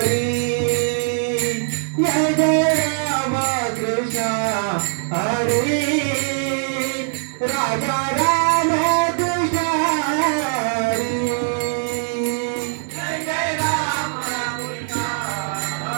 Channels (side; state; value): left; silent; 65 dB below the other